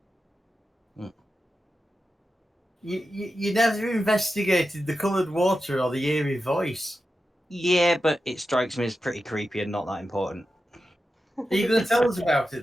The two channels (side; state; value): both; normal; correlation 0.91